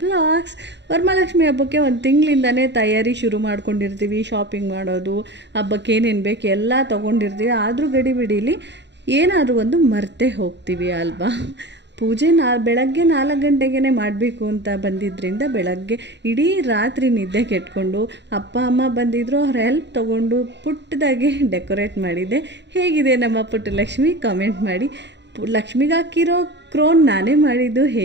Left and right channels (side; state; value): left; late; 0.51 ms